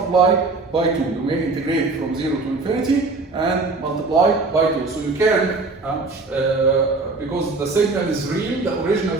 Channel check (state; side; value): quieter; left; 3.7 dB